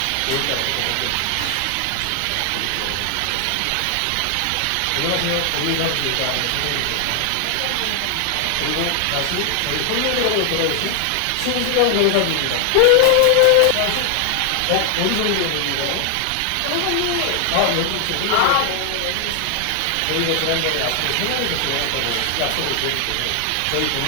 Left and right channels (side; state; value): both; different; correlation 0.00